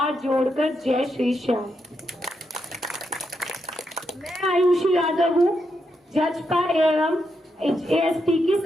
जोड़कर जय श्री श्याम। मैं मैं आयुषी यादव हूँ, जजपा एवं एएसपी की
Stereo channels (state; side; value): normal; both; correlation 0.82